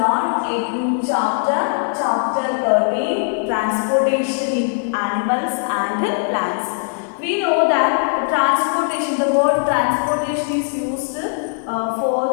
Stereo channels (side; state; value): right; silent; digital silence